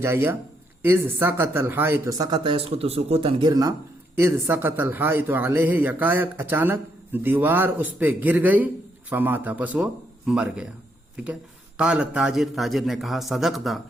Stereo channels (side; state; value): both; normal; correlation 0.76